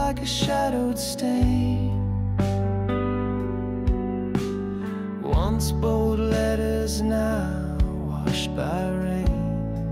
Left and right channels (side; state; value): both; identical; correlation 1.00